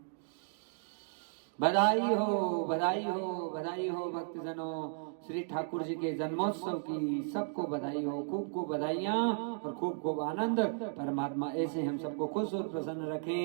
बधाई हो बधाई हो बधाई हो भक्तजनों। श्री ठाकुर जी के जन्मोत्सव की सबको बधाई हो। खूब खूब बधाइयाँ और खूब खूब आनंद। परमात्मा ऐसे हम सबको खुश और प्रसन्न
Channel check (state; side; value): silent; left; digital silence